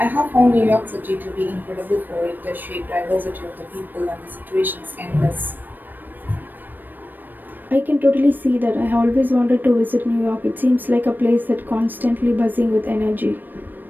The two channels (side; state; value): left; late; 0.091 ms